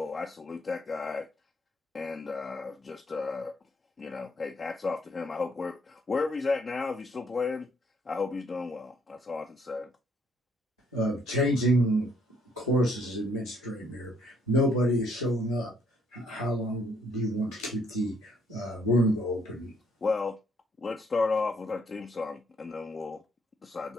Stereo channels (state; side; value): normal; both; correlation 0.68